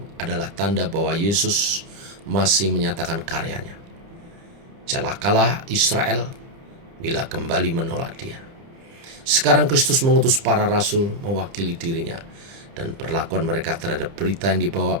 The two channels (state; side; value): late; left; 30 ms